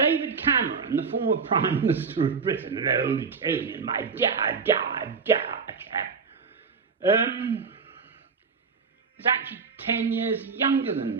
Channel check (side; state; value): left; quieter; 5.4 dB